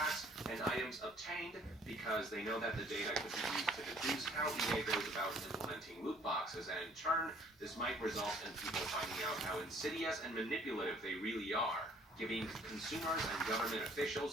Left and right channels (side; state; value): both; normal; correlation 0.58